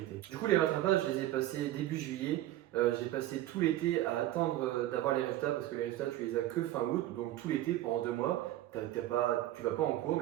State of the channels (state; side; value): quieter; left; 14.6 dB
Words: Du coup les rattrapages je les ai passés début juillet. J'ai passé tout l'été à attendre d'avoir les résultats parce que les résultats tu les as que fin août, donc tout l'été pendant 2 mois tu vas pas en cours